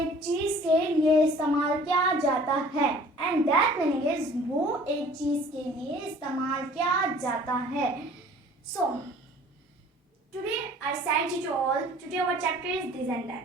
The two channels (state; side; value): normal; both; correlation 0.50